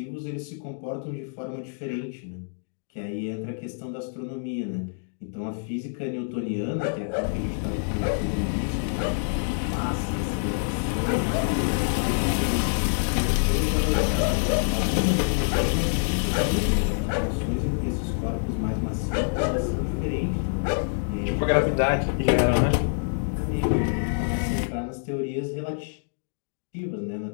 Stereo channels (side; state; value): right; silent; digital silence